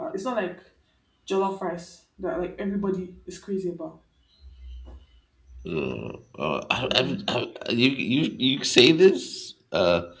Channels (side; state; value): both; identical; correlation 1.00